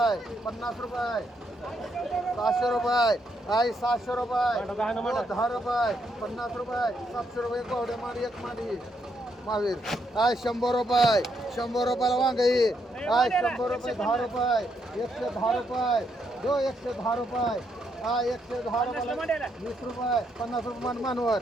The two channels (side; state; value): both; normal; correlation 0.77